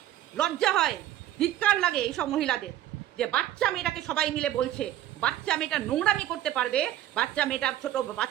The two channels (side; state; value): left; quieter; 12.7 dB